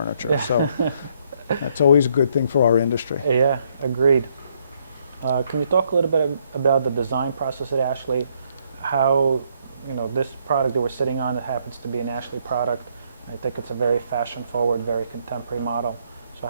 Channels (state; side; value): inverted; both; correlation -0.71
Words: So that's always a good thing for our industry. Yeah, agreed. Can you talk a little bit about the design process at Ashley? How, this product that we're sitting on, it happens to be an Ashley product. I think it's a very fashion-forward, very contemporary model. So